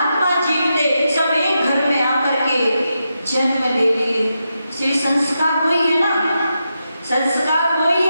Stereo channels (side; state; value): both; inverted; correlation -0.86